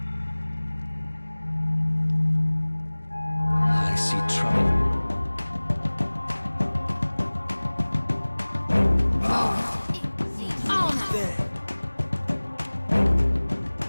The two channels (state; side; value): inverted; both; correlation -1.00